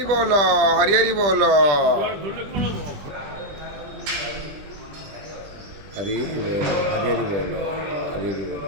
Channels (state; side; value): late; left; 20 ms